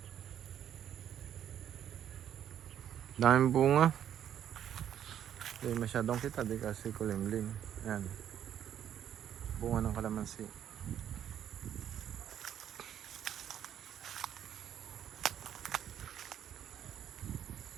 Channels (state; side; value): quieter; left; 10.0 dB